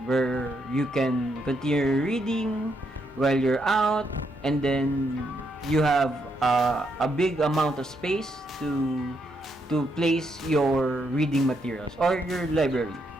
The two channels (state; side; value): normal; both; correlation 0.78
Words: where you can continue reading while you're out, and then you have a big amount of space to place your reading materials or your library.